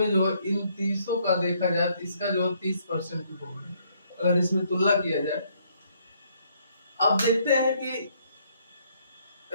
जो है इन 30 का देखा जाए तो इसका जो है 30% रोल है। अगर इसमें तुलना किया जाए, अब देखते हैं कि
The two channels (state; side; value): inverted; both; correlation -0.69